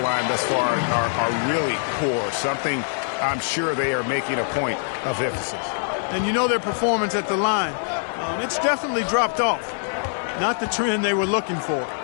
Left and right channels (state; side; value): silent; right; 63 dB below the other